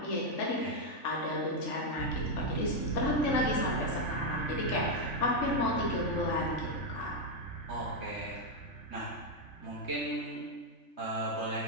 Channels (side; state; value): right; late; 3.5 ms